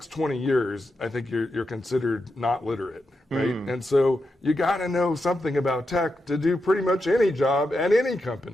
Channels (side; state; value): both; normal; correlation 0.87